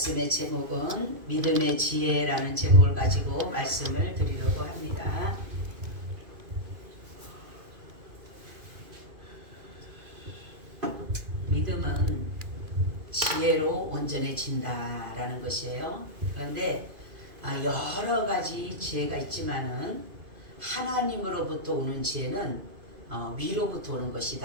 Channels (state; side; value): late; left; 2.5 ms